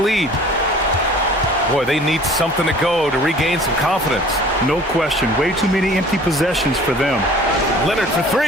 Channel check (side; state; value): both; normal; correlation 0.48